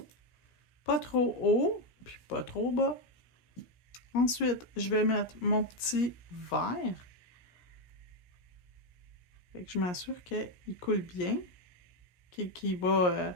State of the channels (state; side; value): late; right; 17 ms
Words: Pas trop haut, puis pas trop bas. Ensuite, je vais mettre mon petit vert. Fait que je m'assure qu'il coule bien. Qu'il va